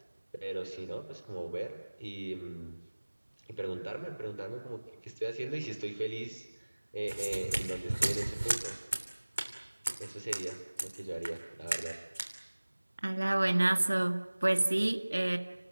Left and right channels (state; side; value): inverted; both; correlation -1.00